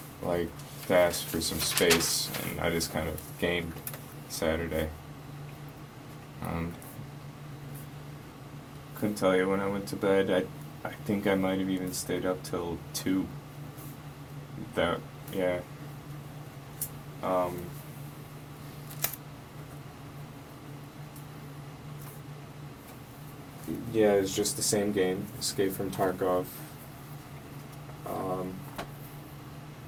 like to ask for some space, and I just kind of gained Saturday. Couldn't tell you when I went to bed. I think I might have even stayed up till 2. That, yeah. Yeah, it was just the same game, Escape from Tarkov.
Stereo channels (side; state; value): both; identical; correlation 1.00